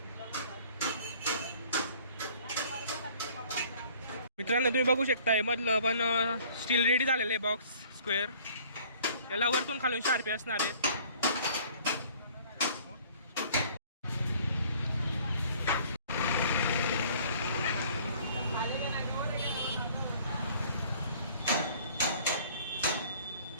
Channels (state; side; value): inverted; both; correlation -0.54